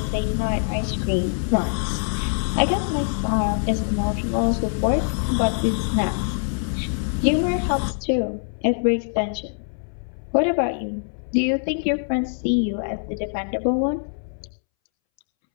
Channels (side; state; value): right; silent; 63 dB below the other